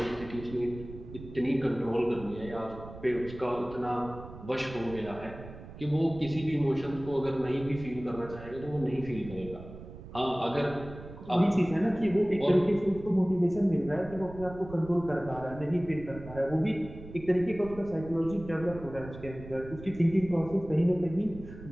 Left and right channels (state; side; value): noise; right; rumble, 14 dB below the sound